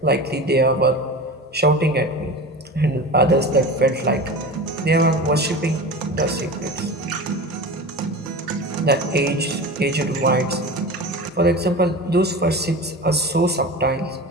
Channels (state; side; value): normal; both; correlation 0.31